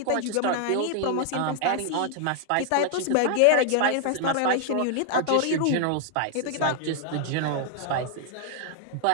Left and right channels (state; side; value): different; both; correlation 0.00